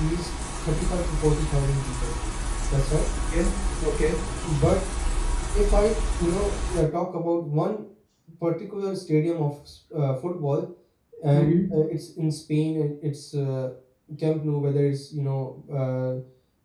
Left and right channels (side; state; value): both; identical; correlation 1.00